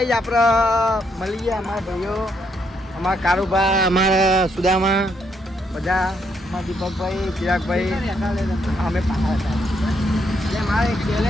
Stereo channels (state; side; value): normal; both; correlation 0.75